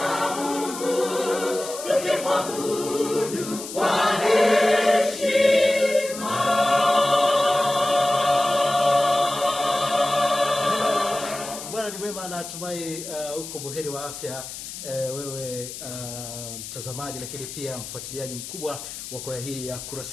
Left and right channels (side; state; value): left; noise; hiss, 10 dB below the sound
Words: Mungu, tukimwabudu kwa heshima. Bwana ni mwema, natumai uko buheri wa afya, wewe mtazamaji, lakini pia mfuatiliaji mkubwa wa kwaya hii ya